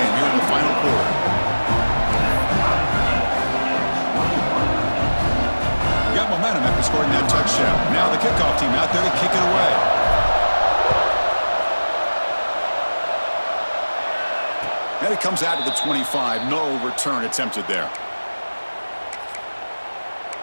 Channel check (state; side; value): inverted; both; correlation -1.00